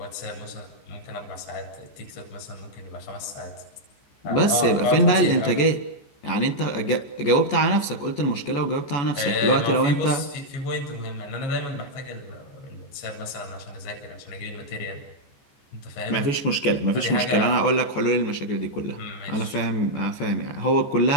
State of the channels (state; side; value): late; right; 14 ms